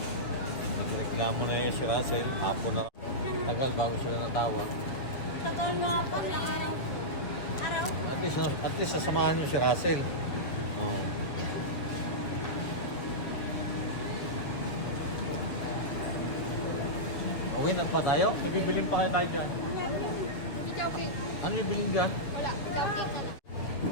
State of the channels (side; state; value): right; late; 7.1 ms